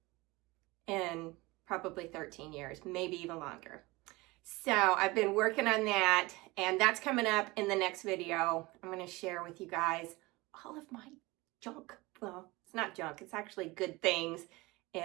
in probably 13 years, maybe even longer. So I've been working on that, and that's coming up in the next video. I'm going to share with you guys all of my junk. Well, it's not junk. It's actually good things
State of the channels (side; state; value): left; quieter; 22.4 dB